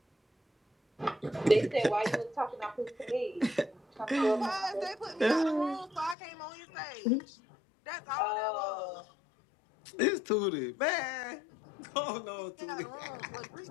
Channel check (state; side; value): drops out; right; at 6.2 s